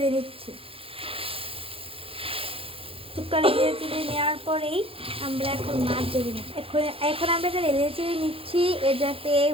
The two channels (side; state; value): left; late; 0.27 ms